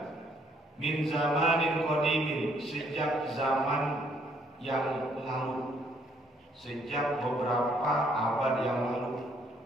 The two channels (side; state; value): both; normal; correlation 0.67